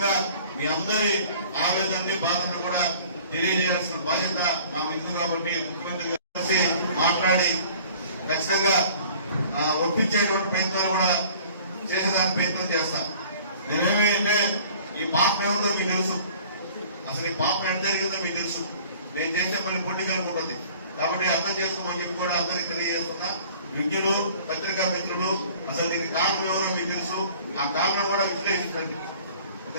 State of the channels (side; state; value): both; inverted; correlation -0.49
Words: మీ అందరి ఆవేదనని, బాధను కూడా తెలియజేయాల్సిన బాధ్యత నాకు ఉంది. కాబట్టి ముఖ్యమంత్రి గారు మాట్లాడి ఖచ్చితంగా ఒప్పించేటువంటి ప్రయత్నాలు కూడా చేసేదానికి ప్రయత్నం చేస్తాను. నేనేమంటే ఈ పాపం ఏముందో మీకు తెలుసు, అసలు ఈ పాపం ఎంత జరిగిందో మీకు తెలుసు. నేను చేసే పని పొలిటికల్ ఉంటుంది కాబట్టి అర్థం చేసుకోమని చెప్పి కూడా అందరికీ తెలియజేస్తున్నా. విజ్ఞులు, పత్రికా మిత్రులు, అసలు దీనికి కారణం ఎవరో మీకు తెలుసు. ఆ కారణం కూడా విశ్లేషించండి.